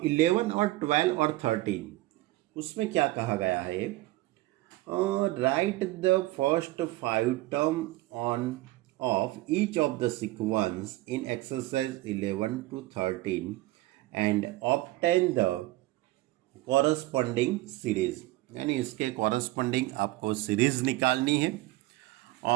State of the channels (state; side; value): quieter; left; 18.3 dB